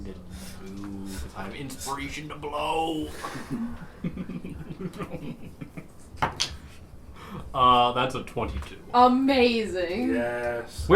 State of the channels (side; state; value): both; identical; correlation 1.00